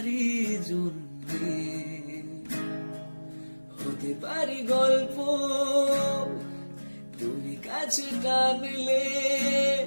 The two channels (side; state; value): both; inverted; correlation -1.00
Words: জন্যে, হতে পারি গল্প তুমি কাছে টানলে,